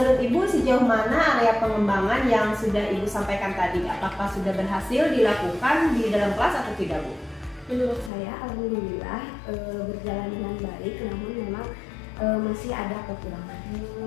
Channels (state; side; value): drops out; right; at 8.1 s